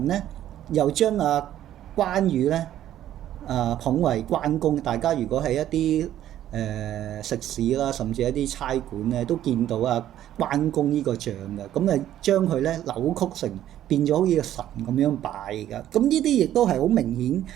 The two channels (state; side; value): quieter; left; 12.0 dB